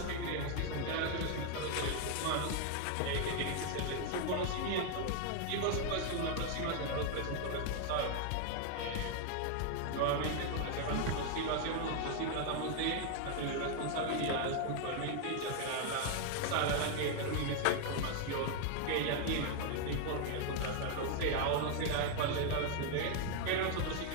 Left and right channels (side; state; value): both; different; correlation 0.00